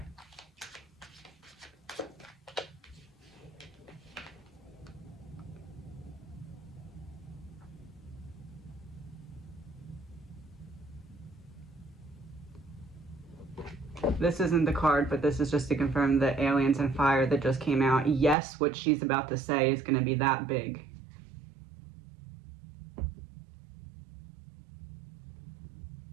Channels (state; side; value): drops out; left; at 18.4 s